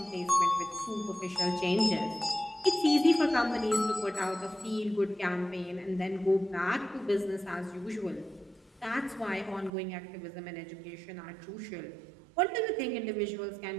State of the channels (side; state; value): left; drops out; at 9.7 s